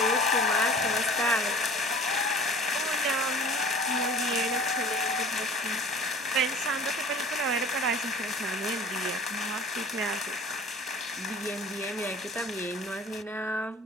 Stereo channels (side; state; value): both; normal; correlation 0.45